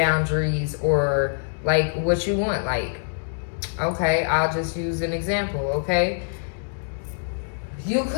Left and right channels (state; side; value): silent; right; digital silence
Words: or like what you want. Like, okay, I'll just use an example, okay?